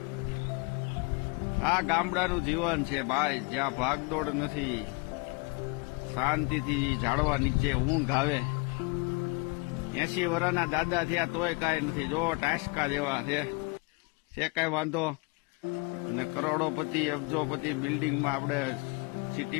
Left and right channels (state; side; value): quieter; right; 29.4 dB